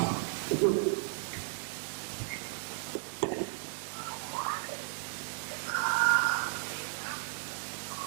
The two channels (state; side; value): silent; left; digital silence